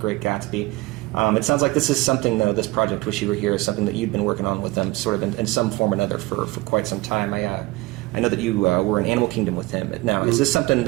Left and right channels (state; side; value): quieter; left; 21.1 dB